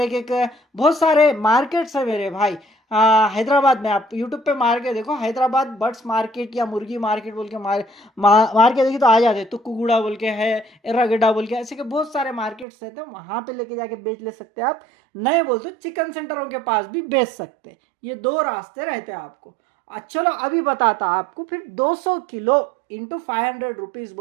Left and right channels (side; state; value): left; drops out; at 12.7 s